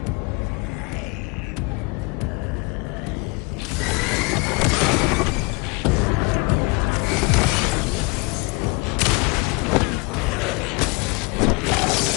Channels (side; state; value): right; quieter; 28.8 dB